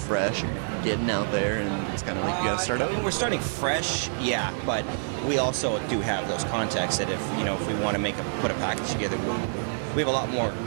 you're getting out there, and it's kind of like you got to start over? We're starting fresh, yeah, but we also do have those contacts that if we want to put a package together, we have a lot more,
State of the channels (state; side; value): silent; left; digital silence